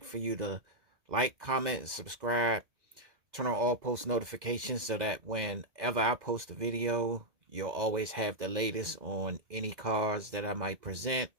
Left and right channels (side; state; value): left; late; 2.1 ms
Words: for you to like, comment, and subscribe. Turn on all post notifications so that whenever I post a video, you'll always have the latest on any cars that I might present